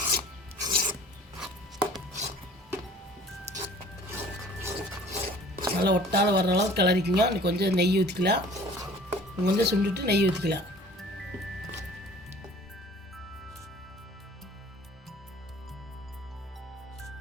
நல்லா ஒட்டாத வர்ற அளவுக்கு கிளறிக்குங்க. இன்னும் கொஞ்சம் நெய் ஊற்றிக்கலாம். கொஞ்சம் சுண்டுட்டு நெய் ஊற்றிக்கலாம்.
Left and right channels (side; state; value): both; normal; correlation 0.49